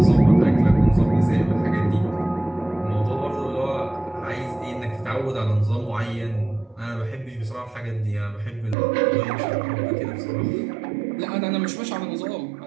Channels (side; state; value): left; drops out; at 8.8 s